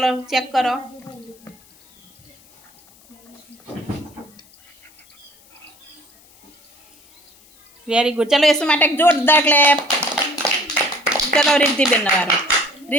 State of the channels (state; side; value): noise; left; hiss, 28 dB below the sound